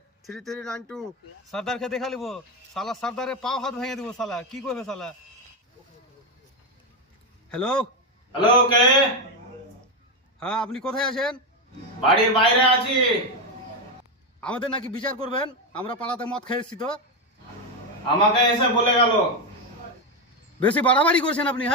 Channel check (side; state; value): both; normal; correlation 0.09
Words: সর্দারকে দেখা লিব, সালা সর্দারে পাও হাত ভেঙে দিব। সালা কি করবে সালা? হ্যালো হ্যালো, কে? হ্যাঁ, আপনি কোথায় আছেন? বাড়ির বাইরে আছি। আমাদের নাকি বিচার করবেন, আমরা পাড়াতে মদ খেয়েছি তো। আমাকে এসে বলে গেল। বেশি বাড়াবাড়ি করছেন আপনি।